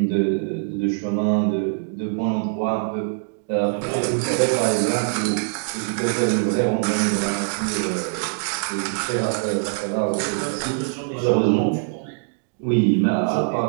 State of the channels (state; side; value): silent; left; digital silence